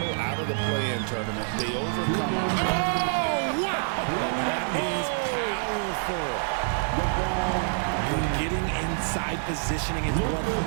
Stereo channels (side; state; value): left; silent; 60 dB below the other